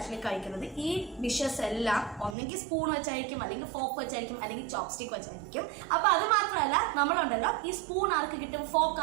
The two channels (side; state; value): left; drops out; at 2.4 s